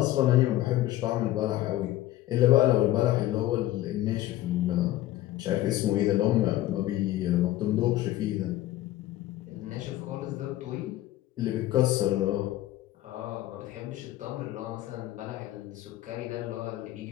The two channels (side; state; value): right; quieter; 14.9 dB